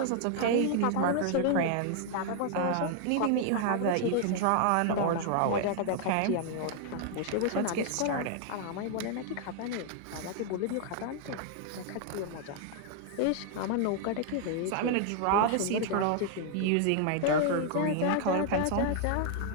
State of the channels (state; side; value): different; both; correlation 0.00